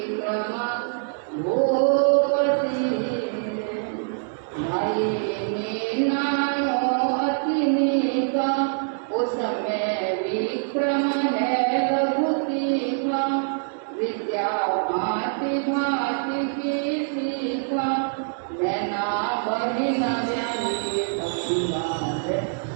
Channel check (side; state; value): left; silent; digital silence